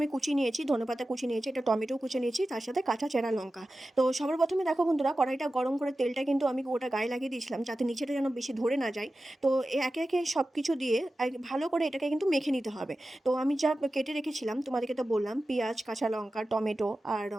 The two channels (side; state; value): both; normal; correlation 0.94